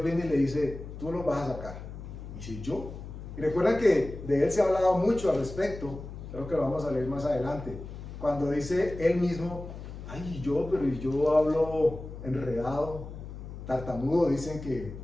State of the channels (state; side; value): noise; left; hum, 11 dB below the sound